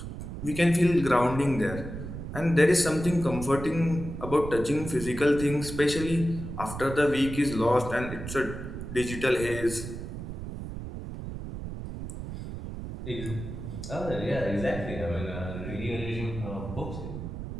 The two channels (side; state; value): right; noise; rumble, 8 dB below the sound